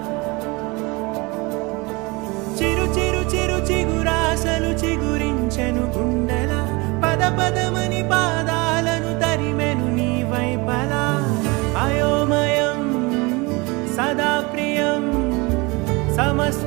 చిరు చిరు చిరు చిగురాశలు చిగురించెను గుండెలా పద పదమని పాదాలను తరిమెను నీ వైపలా అయోమయం సదా ప్రియం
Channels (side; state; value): left; quieter; 25.8 dB